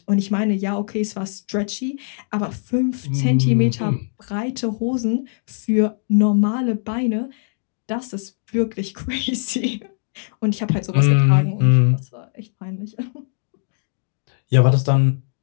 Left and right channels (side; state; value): right; silent; digital silence